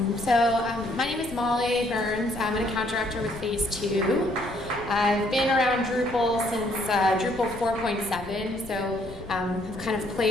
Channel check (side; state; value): left; noise; rumble, 16 dB below the sound